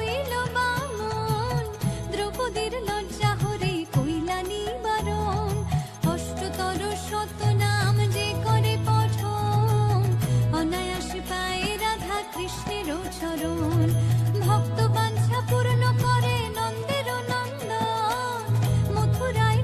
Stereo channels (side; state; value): both; identical; correlation 1.00